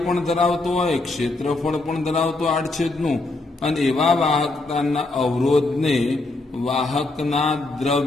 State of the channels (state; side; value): quieter; right; 3.1 dB